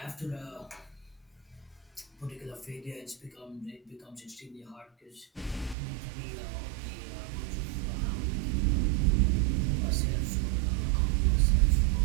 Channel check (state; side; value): drops out; left; at 5.8 s